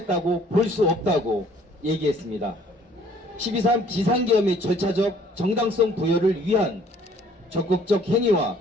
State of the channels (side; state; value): both; normal; correlation 0.58